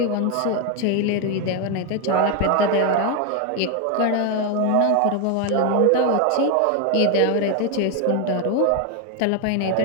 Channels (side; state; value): both; different; correlation 0.01